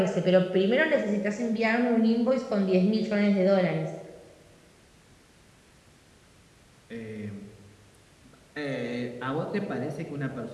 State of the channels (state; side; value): identical; both; correlation 1.00